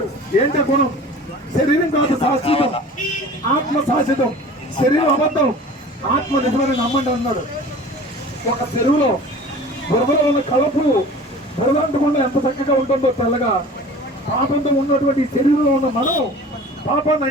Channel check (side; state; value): both; normal; correlation 0.41